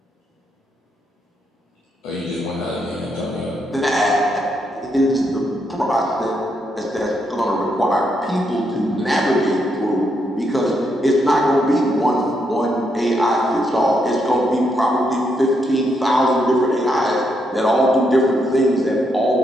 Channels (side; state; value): both; normal; correlation 0.79